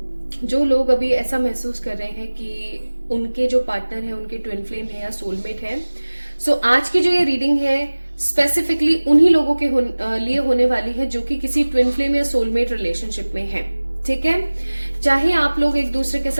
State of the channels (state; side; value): inverted; both; correlation -1.00